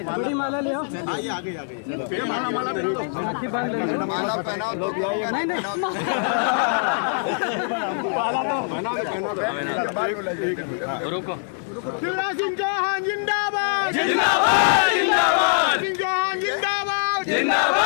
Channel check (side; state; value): right; silent; 63 dB below the other